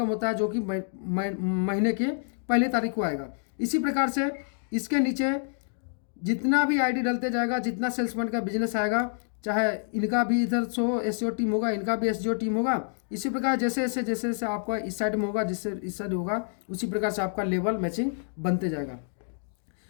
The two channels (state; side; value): silent; right; 59 dB below the other